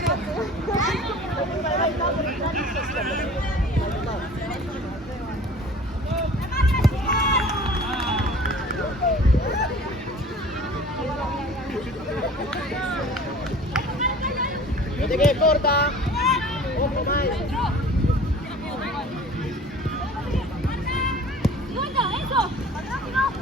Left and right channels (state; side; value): normal; both; correlation 0.45